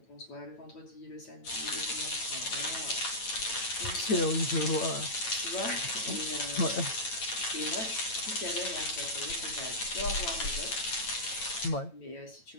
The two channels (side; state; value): right; late; 9.0 ms